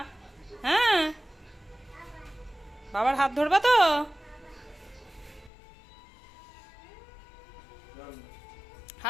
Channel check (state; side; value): drops out; right; at 5.5 s